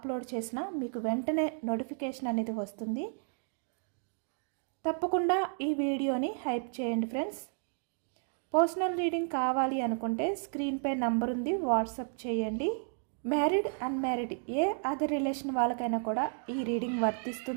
చేసినా మీకు వెంటనే నోటిఫికేషన్ అనేది వస్తుంది. తప్పకుండా ఈ వీడియోని హైప్ చేయండి ఫ్రెండ్స్. పర్సనల్ రీడింగ్ కావాలి అనుకుంటే స్క్రీన్పై నంబర్ ఉంది, వాట్సాప్ చేయండి. మ్యారీడ్ అన్మ్యారీడ్ ఏ అదర్ రిలేషన్ వాళ్ళకైనా కూడా ఈ రీడింగ్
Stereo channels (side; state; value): left; silent; 56 dB below the other